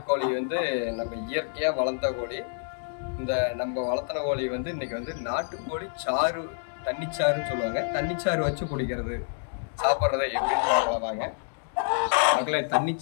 வந்து நம்ம இயற்கையாக வளர்த்த கோழி. இந்த நம்ம வளர்த்தின கோழி வந்து இன்றைக்கி வந்து நாட்டுக்கோழி சாறு, தண்ணிச்சாறுன்னு சொல்லுவாங்க. தண்ணிச்சாறு வச்சு குடிக்கிறது, சாப்பிட்றதை எப்படின்னு பார்க்கலாங்க. மக்களே,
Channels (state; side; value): silent; right; digital silence